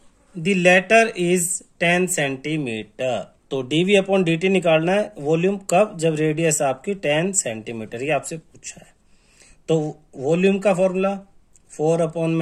the latter is 10 centimetre, तो dv upon dt निकालना है volume कब, जब रेडियस आपकी 10 सेंटीमीटर, ये आपसे पूछा है। तो वॉल्यूम का फॉर्मूला 4 अपॉन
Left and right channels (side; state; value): both; identical; correlation 1.00